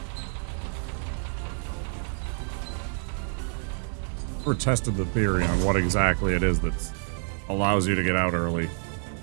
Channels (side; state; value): left; silent; 60 dB below the other